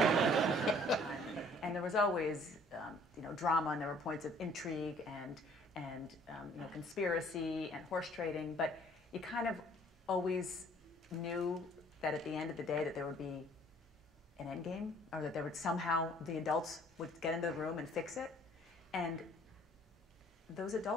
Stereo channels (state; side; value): normal; both; correlation 0.57